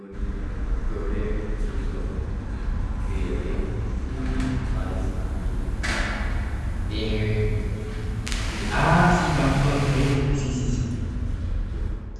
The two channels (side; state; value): both; identical; correlation 1.00